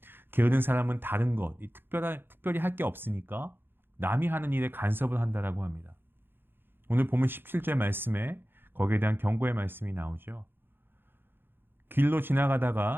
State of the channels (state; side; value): late; left; 0.10 ms